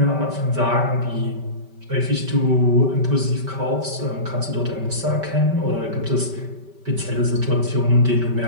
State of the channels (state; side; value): late; left; 5.2 ms